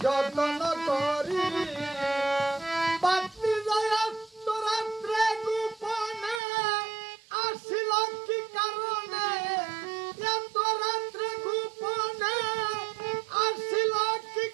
যত্ন করি বাতি যায় রাত্রে গোপনে আসিল কি কারণে এত রাত্রে গোপনে আসিল কি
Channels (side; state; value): left; drops out; at 6.4 s